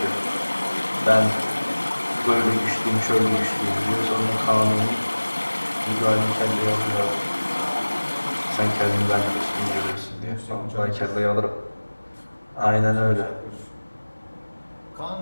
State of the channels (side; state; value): both; inverted; correlation -1.00